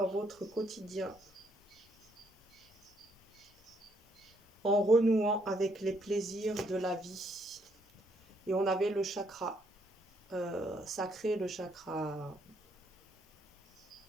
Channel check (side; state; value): both; normal; correlation 0.71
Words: votre quotidien en renouant avec les plaisirs de la vie. Et on avait le chakra sacré, le chakra...